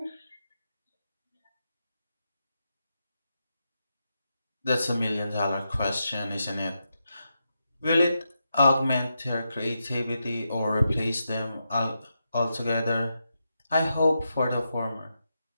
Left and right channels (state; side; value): inverted; both; correlation -0.86